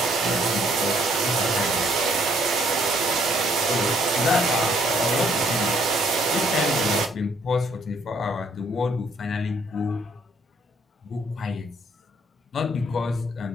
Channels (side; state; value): both; normal; correlation 0.66